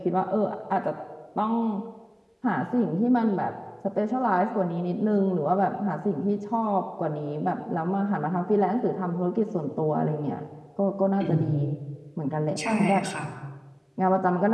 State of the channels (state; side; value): identical; both; correlation 1.00